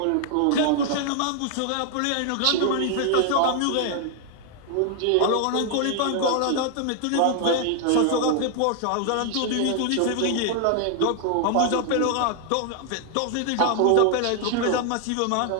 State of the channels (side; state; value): both; different; correlation 0.00